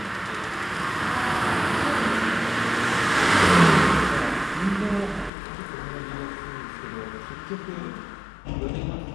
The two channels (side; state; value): right; drops out; at 5.3 s